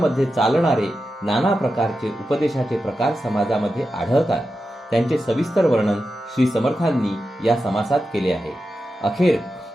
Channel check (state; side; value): normal; both; correlation 0.90